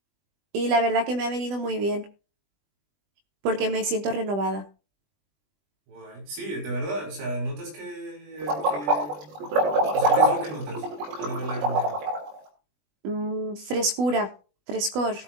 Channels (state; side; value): late; left; 20 ms